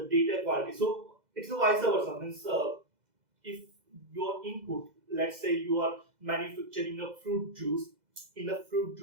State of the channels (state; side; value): late; left; 2.0 ms